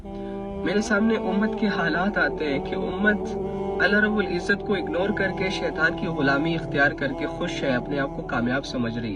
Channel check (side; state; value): both; identical; correlation 1.00